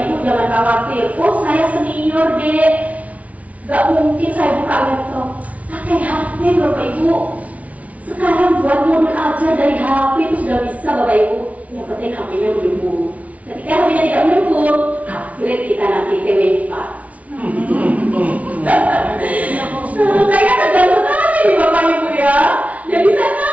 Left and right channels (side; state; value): left; late; 0.068 ms